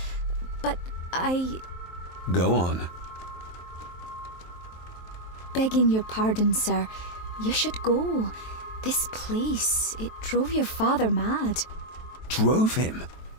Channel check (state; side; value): late; right; 23 ms